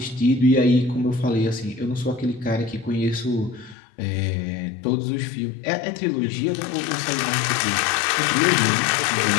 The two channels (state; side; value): drops out; right; at 3.8 s